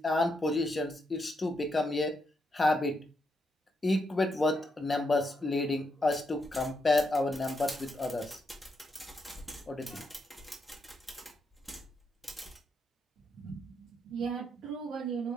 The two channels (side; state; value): both; normal; correlation 0.81